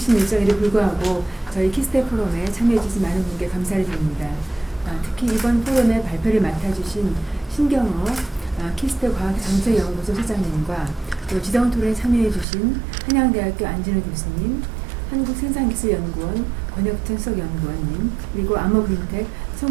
일정에도 불구하고 저희 키스테 포럼에 참여해주신 많은 분께 감사를 드립니다. 특히 이번 포럼의 발표를 맡아주신 신경호 키스테 과학정책연구소 소장님과 또 지정 토론에 참여해주신 한양대학교 안진호 교수님, 한국생산기술연구원 권혁천 수석연구원님, 그리고 암호그린텍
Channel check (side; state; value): left; drops out; at 12.5 s